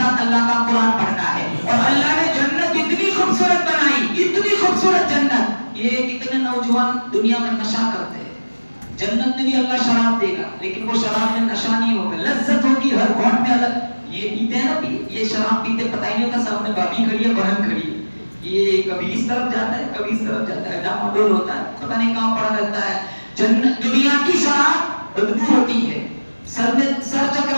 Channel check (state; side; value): inverted; both; correlation -1.00